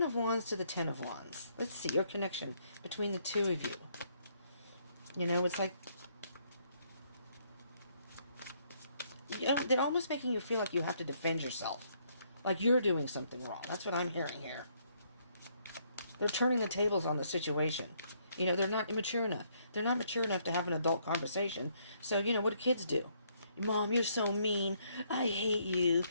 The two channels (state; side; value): inverted; both; correlation -0.70